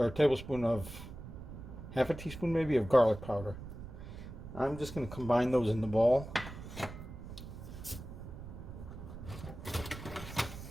a tablespoon of, half a teaspoon maybe, of garlic powder. I'm just going to combine those in the bowl.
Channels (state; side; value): noise; right; rumble, 11 dB below the sound